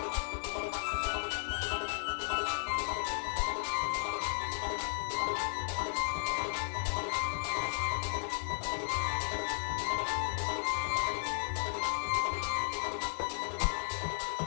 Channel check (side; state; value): right; silent; digital silence